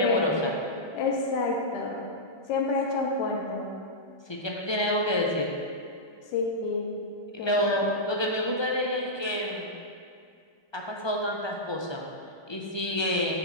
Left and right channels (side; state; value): right; late; 1.2 ms